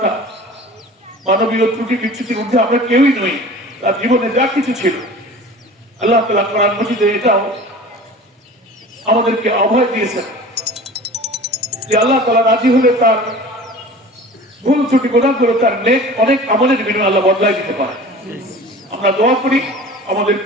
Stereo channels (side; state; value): both; normal; correlation 0.41